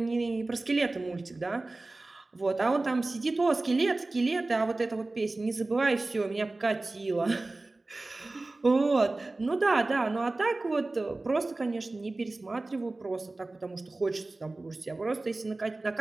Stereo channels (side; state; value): left; quieter; 3.1 dB